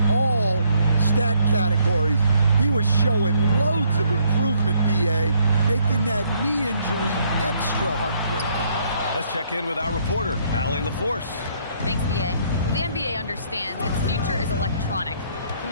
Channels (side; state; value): both; inverted; correlation -0.68